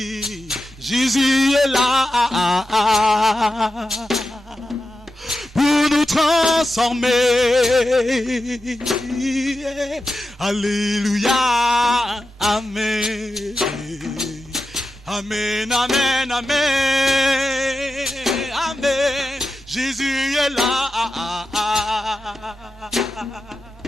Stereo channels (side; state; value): both; normal; correlation 0.91